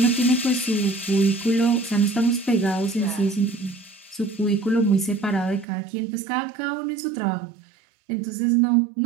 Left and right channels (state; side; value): drops out; left; at 5.7 s